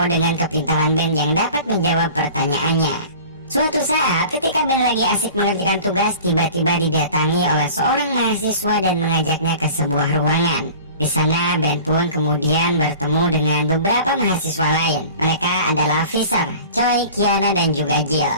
dengan kepintaran Ben yang dapat menjawab pertanyaannya. Suatu saat ketika Ben lagi asik mengerjakan tugas, tiba-tiba didatangi oleh seorang mahasiswa dan mengajaknya ke sebuah ruangan. Di sana Ben pun kemudian bertemu dengan beberapa mahasiswa lain. Mereka adalah Fisher, Choi, Kiana, dan juga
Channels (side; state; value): both; inverted; correlation -0.42